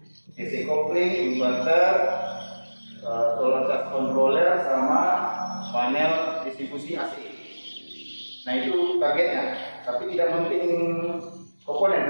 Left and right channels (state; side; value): inverted; both; correlation -1.00